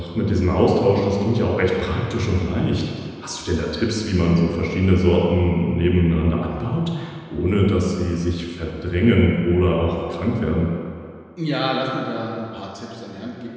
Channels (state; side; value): identical; both; correlation 1.00